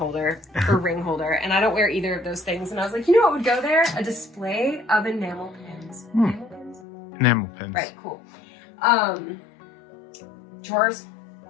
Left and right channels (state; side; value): drops out; right; at 6.9 s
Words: or ring holder, and I don't wear either of those things. And I was like, you know what would go there? A display of enamel pins. Enamel pins? Enamel pins. Right, cool. Drawers,